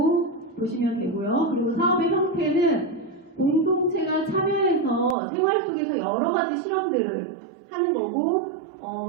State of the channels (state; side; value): drops out; left; at 5.2 s